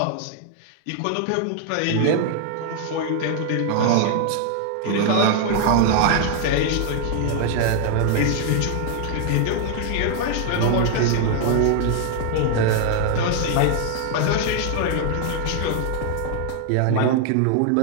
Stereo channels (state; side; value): different; both; correlation 0.00